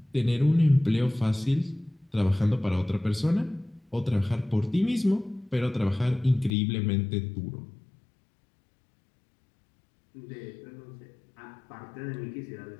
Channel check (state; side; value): drops out; right; at 6.5 s